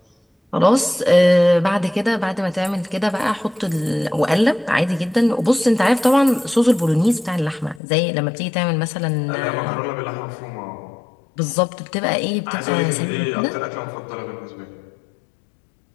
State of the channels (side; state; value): right; drops out; at 7.8 s